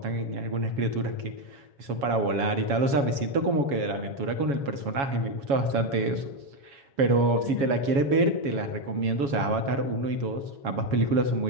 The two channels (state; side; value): late; left; 7.2 ms